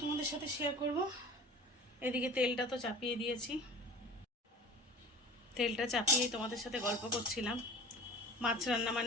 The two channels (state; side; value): normal; both; correlation 0.38